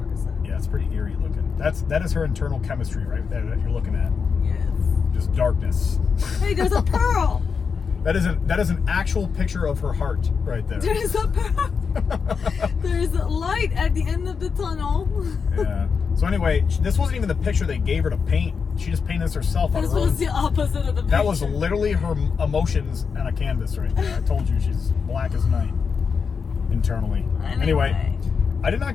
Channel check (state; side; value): quieter; right; 5.7 dB